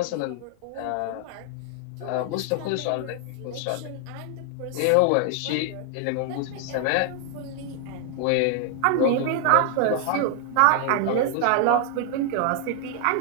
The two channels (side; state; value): both; different; correlation 0.00